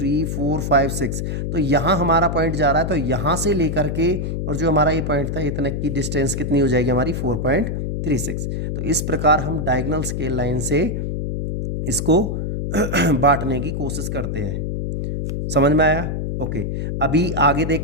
4 5 6। तो यहाँ हमारा पॉइंट जा रहा है, तो यहाँ से लेकर के और जो हमारा ये पॉइंट था इतने की डिस्टेंस कितनी हो जाएगी हमारी, 4.36। तो इस प्रकार हम डायगोनल स्केल लाइन से इसको बांटने की कोशिश करते हैं। समझ में आया? ओके, अभी आगे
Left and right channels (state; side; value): noise; left; hum, 2 dB below the sound